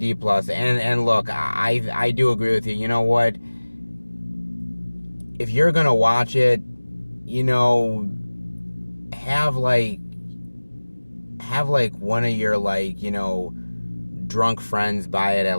plus, and look, I do agree with you. You know what? If you're gonna watch it, have one of your drunk friends buy it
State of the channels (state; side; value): inverted; both; correlation -1.00